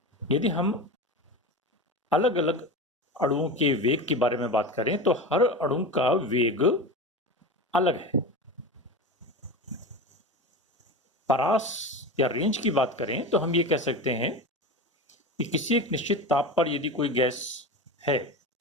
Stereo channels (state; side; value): normal; both; correlation 0.26